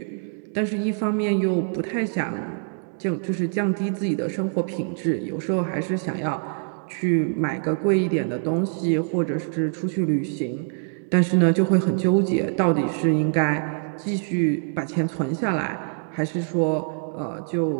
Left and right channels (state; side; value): silent; left; 62 dB below the other